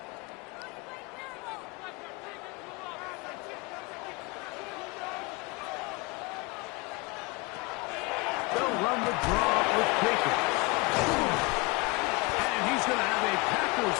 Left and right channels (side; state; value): right; quieter; 26.4 dB